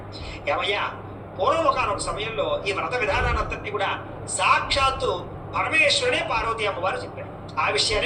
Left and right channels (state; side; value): identical; both; correlation 1.00